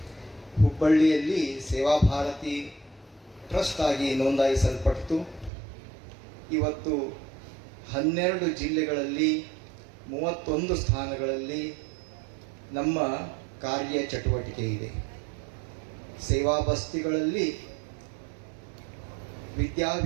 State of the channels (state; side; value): drops out; left; at 5.5 s